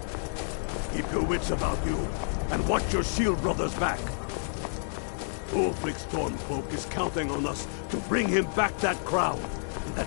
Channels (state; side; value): silent; right; digital silence